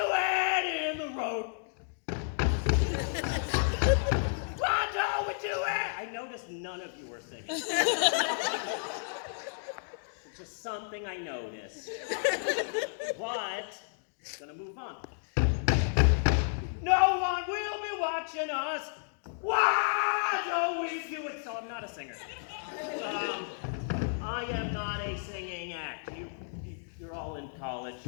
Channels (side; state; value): right; silent; digital silence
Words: it in the road? Why don't we do it? I noticed none of you were singing. It's just something I noticed. But, gonna move on. No one will be watching us. Why don't we do it? So I'm not a singer. I am not a singing act. You're all in college.